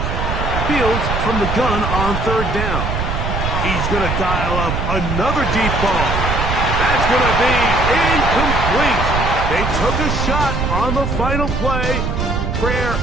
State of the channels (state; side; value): noise; right; rumble, 2 dB below the sound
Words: Fields from the gun on 3rd down. He's going to dial up another deep ball. That's going to be incomplete. They took a shot on the final play. Prayer